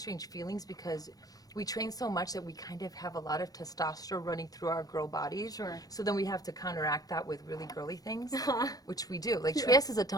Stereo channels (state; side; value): late; right; 0.18 ms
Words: feelings because we train so much that we kind of have a lot of testosterone running through our girl bodies. Sure. So then we have to counteract that with really girly things, which we do. Like Trieste is a